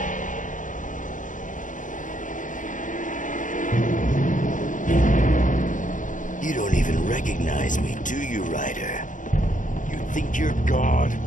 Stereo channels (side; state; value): right; late; 0.37 ms